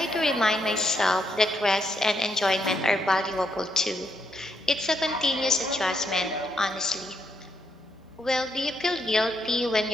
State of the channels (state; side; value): normal; both; correlation 0.77